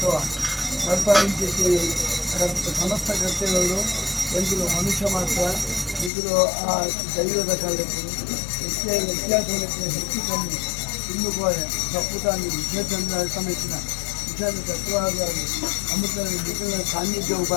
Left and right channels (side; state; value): right; drops out; at 6.1 s